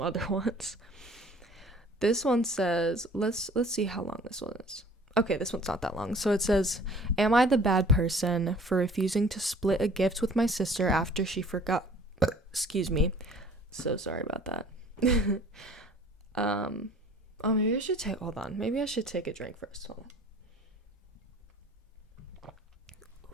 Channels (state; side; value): normal; both; correlation 0.50